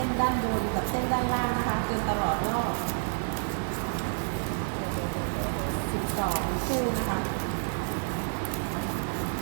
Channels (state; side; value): silent; left; 58 dB below the other